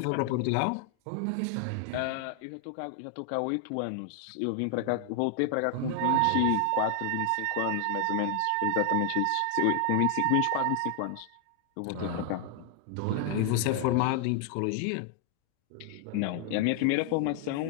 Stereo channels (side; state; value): both; different; correlation 0.00